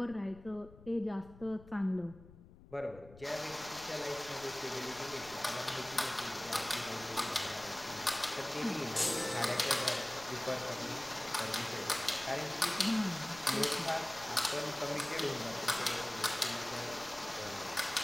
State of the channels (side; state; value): left; noise; rumble, 20 dB below the sound